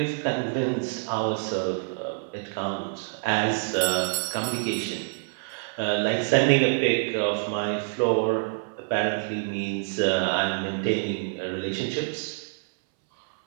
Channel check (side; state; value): left; silent; 60 dB below the other